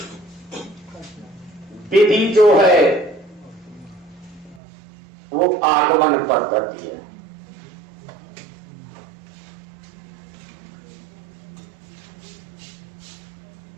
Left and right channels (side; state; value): left; drops out; at 4.6 s